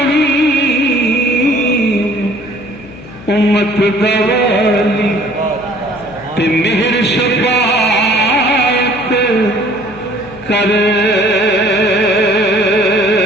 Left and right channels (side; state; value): left; noise; hum, 19 dB below the sound